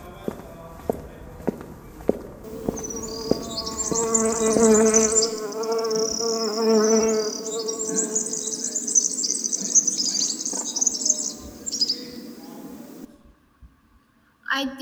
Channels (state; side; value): identical; both; correlation 1.00